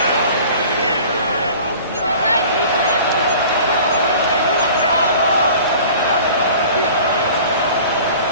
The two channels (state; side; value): inverted; both; correlation -0.44